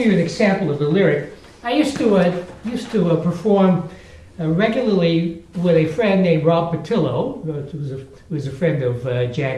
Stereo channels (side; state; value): both; identical; correlation 1.00